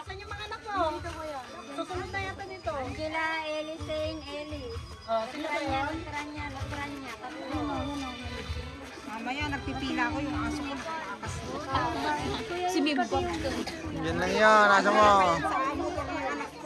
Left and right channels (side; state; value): both; identical; correlation 1.00